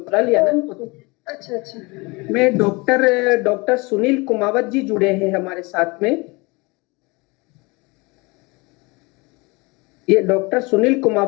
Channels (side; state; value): right; quieter; 26.0 dB